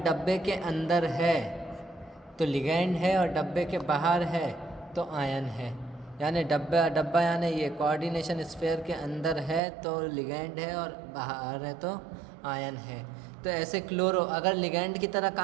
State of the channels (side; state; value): left; drops out; at 9.6 s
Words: के अंदर है तो लिगेंड है और डब्बे के बाहर है तो आयन है। यानी डब्बा यानी ये कोऑर्डिनेशन स्फीयर के अंदर है तो लिगेंड है और बाहर है तो आयन है। तो ऐसे क्लोरो अगर लिगेंड की तरह